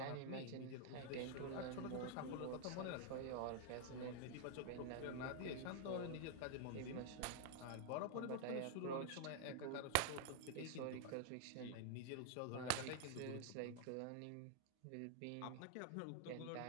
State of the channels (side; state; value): both; different; correlation 0.00